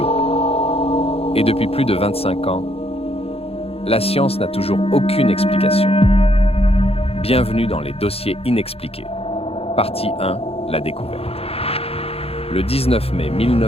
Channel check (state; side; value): late; right; 0.28 ms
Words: Et depuis plus de 25 ans, la science n'a toujours aucune explication. Bienvenue dans les dossiers inexpliqués. Partie 1, la découverte. Le 19 mai